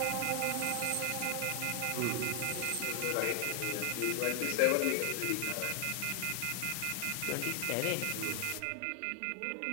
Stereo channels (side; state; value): both; different; correlation 0.00